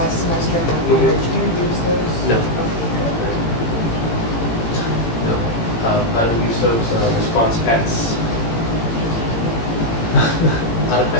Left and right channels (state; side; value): late; right; 17 ms